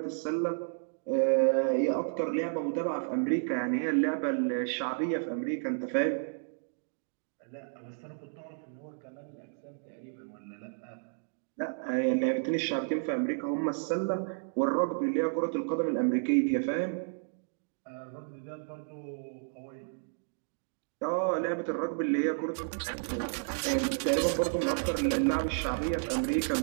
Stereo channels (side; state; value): left; silent; digital silence